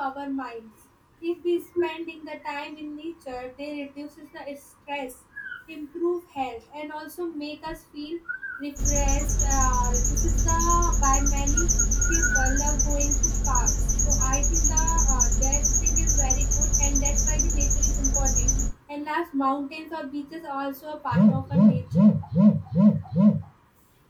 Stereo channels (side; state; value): both; identical; correlation 1.00